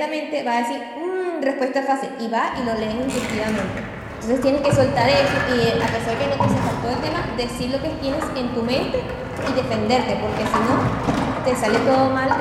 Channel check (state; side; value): identical; both; correlation 1.00